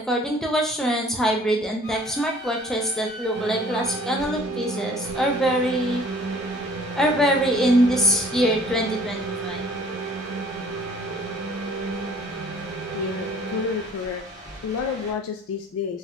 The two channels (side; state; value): both; normal; correlation 0.54